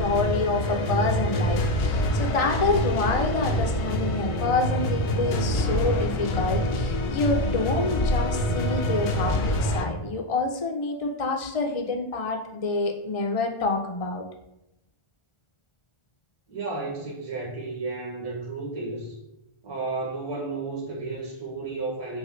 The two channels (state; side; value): late; right; 1.4 ms